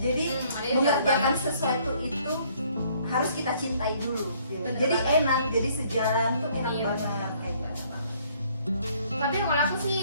ada yang mengerjakan jauh sesuatu itu harus kita cintai dulu. Gitu. Bener Jadi banget. enak, jadi sejalan tuh enak Iya. banget kayak gitu. Tapi kalau aku sih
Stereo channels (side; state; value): both; inverted; correlation -0.62